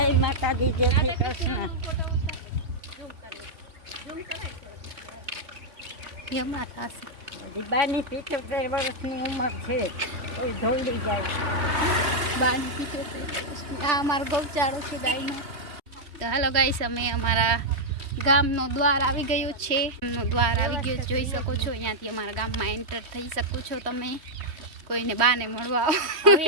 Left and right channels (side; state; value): left; late; 3.1 ms